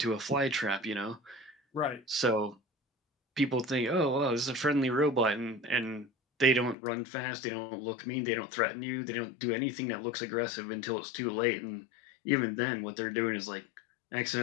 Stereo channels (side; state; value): right; drops out; at 6.8 s